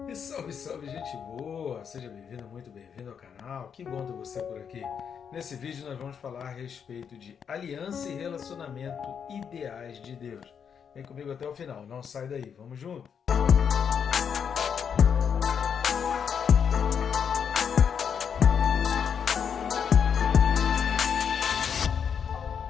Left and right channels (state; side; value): quieter; right; 7.3 dB